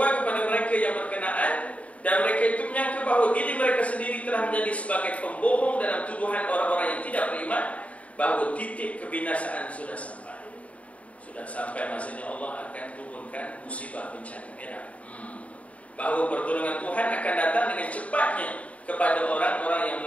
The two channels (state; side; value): late; right; 0.066 ms